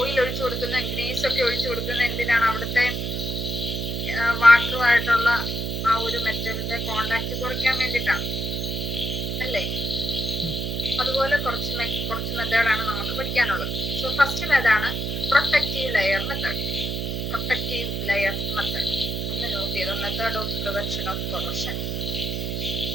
ഒഴിച്ചു കൊടുക്കുന്ന, ഗ്രീസ് ഒക്കെ ഒഴിച്ചു കൊടുക്കുന്ന എന്തിനാണ്? അവിടുത്തെ വാട്ടറുമായിട്ടുള്ള ആ ഒരു മെറ്റലിന്റെ കോണ്ടാക്ട് കുറയ്ക്കാൻ വേണ്ടിയിട്ടാണ് അല്ലേ? അതുപോലെ കുറച്ച് മെത്തേഡാണ് നമുക്ക് പഠിക്കാനുള്ളത്. സോ ഫസ്റ്റ് മെത്തേഡാണ് പ്രൊട്ടക്റ്റീവ് ലെയർ മെത്തേഡ്. ഒന്ന് നോട്ട് ചെയ്തോ, method of prevention of corrosion.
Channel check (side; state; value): right; noise; hum, 2 dB below the sound